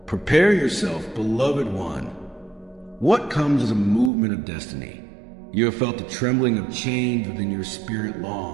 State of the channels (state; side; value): drops out; left; at 4.1 s